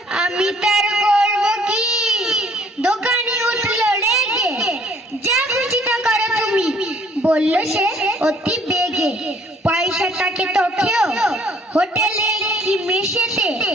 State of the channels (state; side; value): normal; both; correlation 0.60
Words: আমি তার করব কি? দোকানি উঠল রেগে, যা খুশি তা করো তুমি, বলল সে অতি বেগে। পয়সাটাকে তো খেও হোটেলে কি মেশেতে,